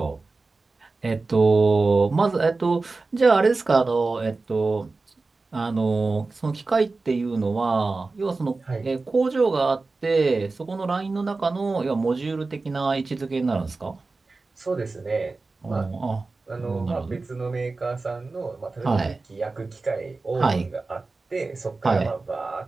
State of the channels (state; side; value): quieter; left; 3.7 dB